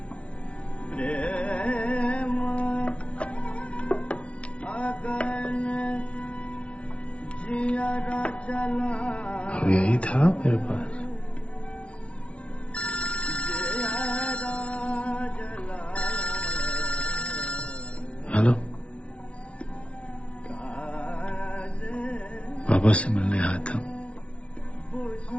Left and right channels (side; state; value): right; late; 0.061 ms